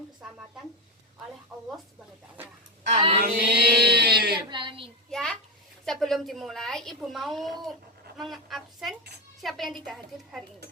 keselamatan oleh Allah Subhanahu wa taala. Amin. Ya, sebelum dimulai, Ibu mau mengabsen siapa yang tidak hadir hari ini.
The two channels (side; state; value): both; normal; correlation 0.14